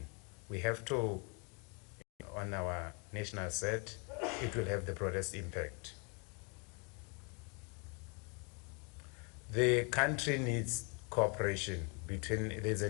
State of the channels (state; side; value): quieter; right; 34.7 dB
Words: We have to, on our national CERT, it will have the broadest impact. The country needs cooperation there's a